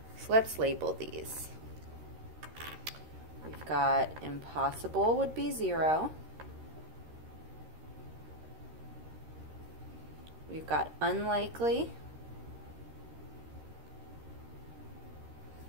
So let's label these. We've got impossible would be 0. We've got unlikely,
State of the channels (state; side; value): late; left; 13 ms